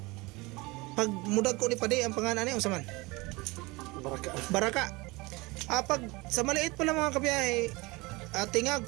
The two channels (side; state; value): left; quieter; 23.8 dB